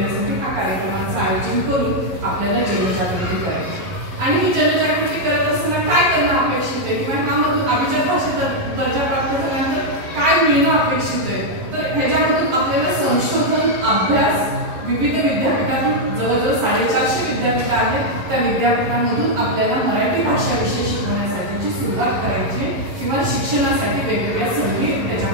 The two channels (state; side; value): late; left; 11 ms